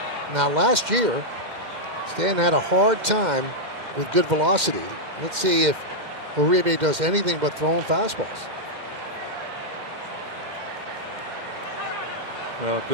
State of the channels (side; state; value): left; late; 2.1 ms